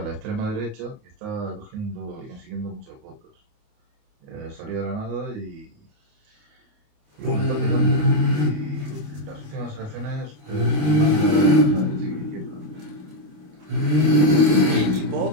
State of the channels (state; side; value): late; left; 28 ms